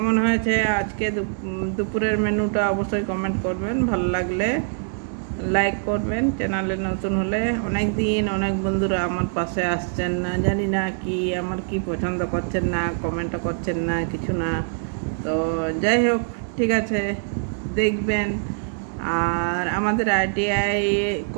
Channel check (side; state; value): left; silent; digital silence